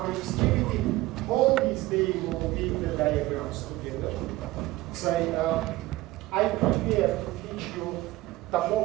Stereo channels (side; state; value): left; quieter; 18.2 dB